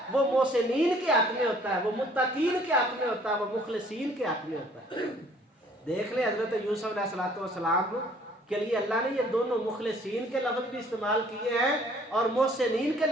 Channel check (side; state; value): both; normal; correlation 0.58